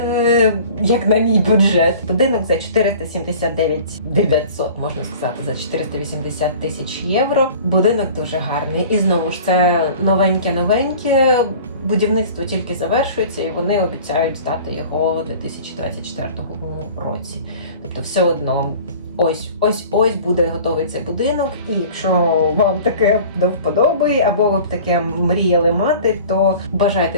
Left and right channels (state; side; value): inverted; both; correlation -0.44